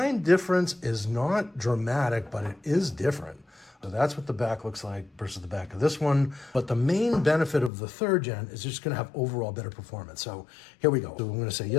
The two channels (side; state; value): right; drops out; at 7.7 s